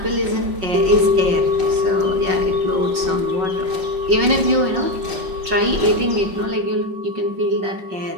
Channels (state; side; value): late; left; 5.3 ms